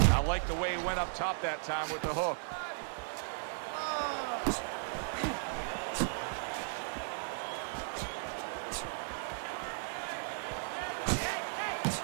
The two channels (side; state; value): left; silent; digital silence